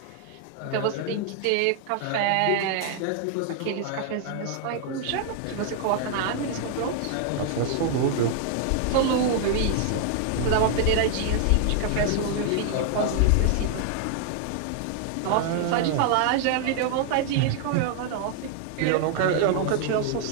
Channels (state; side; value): different; both; correlation 0.00